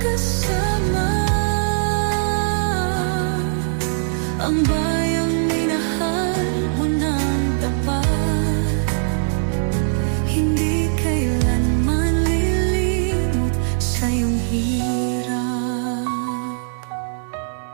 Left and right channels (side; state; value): left; silent; digital silence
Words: kasama. Ang bayang minahal mo ng tapat, hindi kailanman lilimot sa iyong hirap.